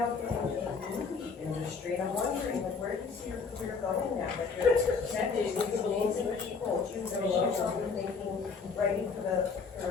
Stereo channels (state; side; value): quieter; right; 5.1 dB